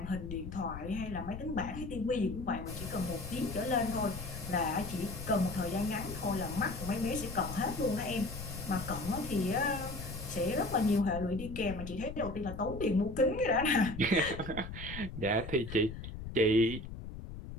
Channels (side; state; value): left; noise; rumble, 9 dB below the sound